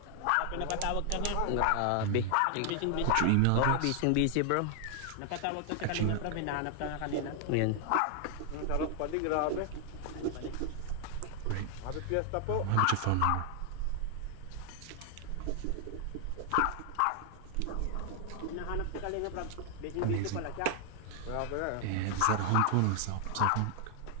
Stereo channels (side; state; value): both; different; correlation 0.00